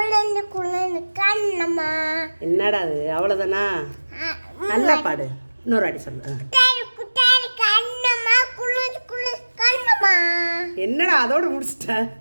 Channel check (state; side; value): inverted; both; correlation -1.00